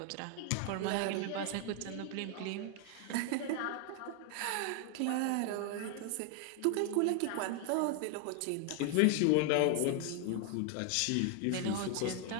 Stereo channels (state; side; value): different; both; correlation 0.01